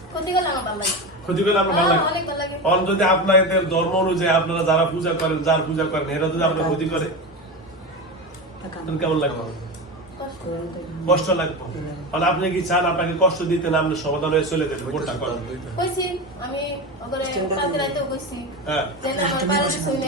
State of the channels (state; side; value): normal; both; correlation 0.22